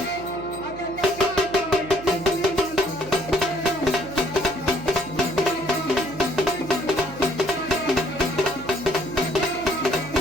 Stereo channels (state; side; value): noise; right; hum, 15 dB below the sound